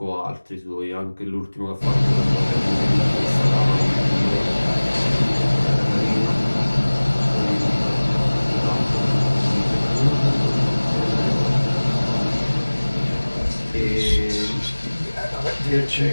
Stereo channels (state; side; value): inverted; both; correlation -1.00